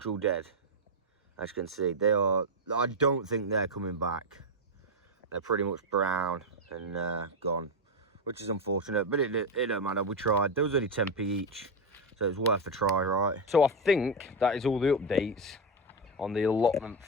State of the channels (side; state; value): both; normal; correlation 0.07